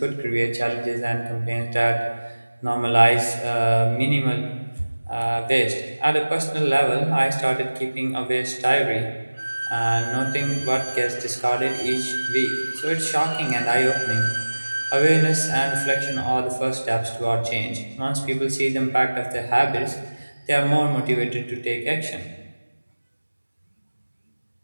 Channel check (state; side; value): inverted; both; correlation -1.00